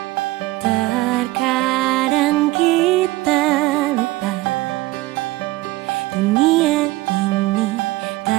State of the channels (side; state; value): left; quieter; 19.3 dB